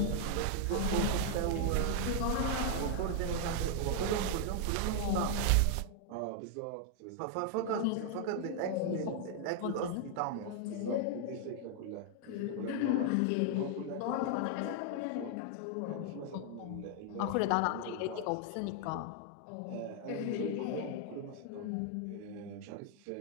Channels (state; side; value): different; both; correlation 0.00